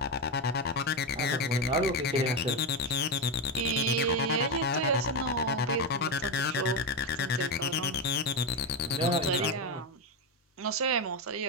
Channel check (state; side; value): normal; both; correlation 0.11